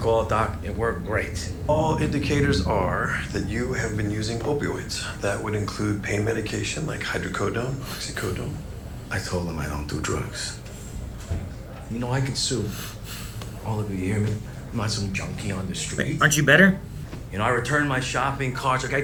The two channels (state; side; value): identical; both; correlation 1.00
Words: it, Doc, it worked great. All indicators are that you have been using opioids. That would include pain medication like hydrocodone, oxycodone. I told him I don't do drugs. You know, I could sue all of you, hear me? I'm not some junkie on the street. Aren't you better? You know, I return my shopping carts, like I